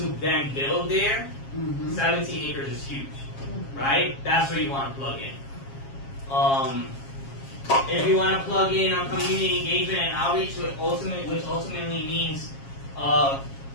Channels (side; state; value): right; late; 7.4 ms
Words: then build there. 17 acres is huge, right? That's where you want to plug in. If you want to plug in on community engagement and outreach, which ultimately means